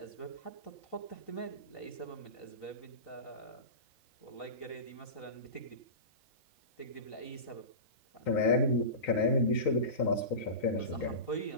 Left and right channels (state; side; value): late; right; 3.9 ms